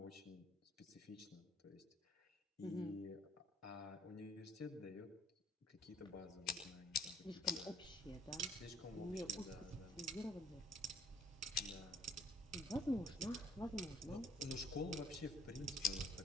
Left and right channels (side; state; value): both; normal; correlation 0.59